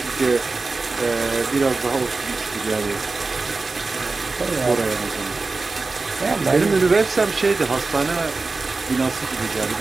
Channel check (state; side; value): quieter; left; 3.8 dB